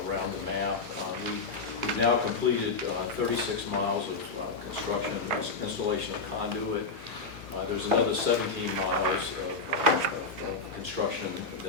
around the map. We've now completed 36 miles of construction, installation of conduit. There's another 17 miles of construction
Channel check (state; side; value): quieter; right; 3.9 dB